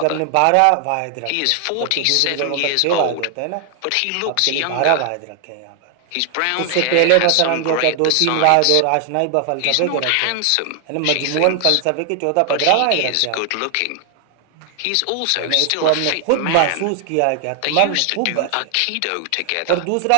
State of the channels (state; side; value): different; both; correlation 0.00